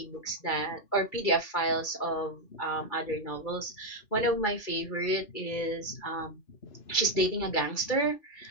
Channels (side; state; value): right; late; 2.3 ms